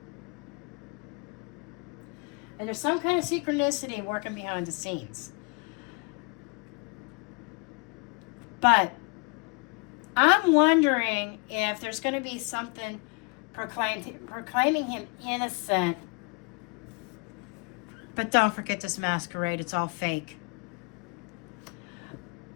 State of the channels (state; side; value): quieter; right; 32.2 dB